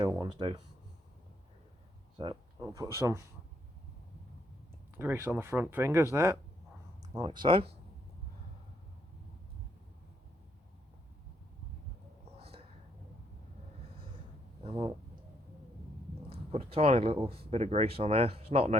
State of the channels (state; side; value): normal; both; correlation 0.72